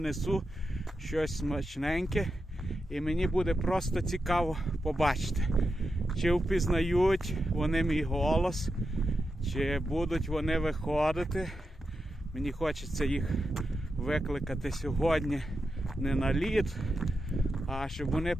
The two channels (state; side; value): normal; both; correlation 0.88